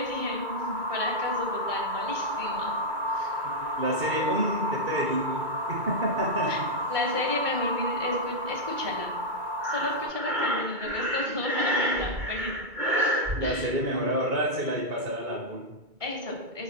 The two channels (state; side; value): late; left; 2.2 ms